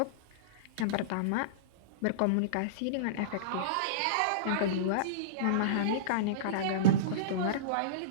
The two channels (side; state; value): both; different; correlation -0.04